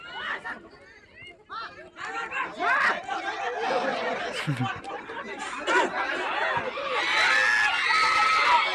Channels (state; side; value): identical; both; correlation 1.00